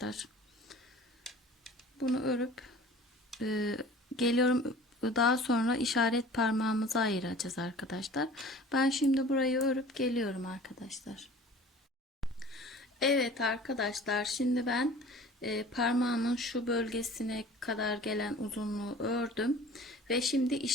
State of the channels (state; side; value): normal; both; correlation 0.45